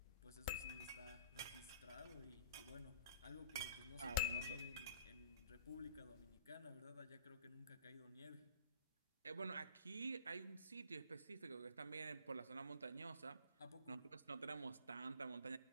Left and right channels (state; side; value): inverted; both; correlation -0.51